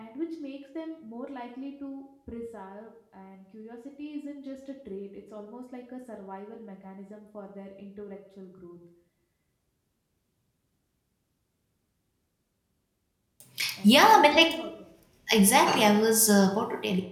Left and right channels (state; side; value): identical; both; correlation 1.00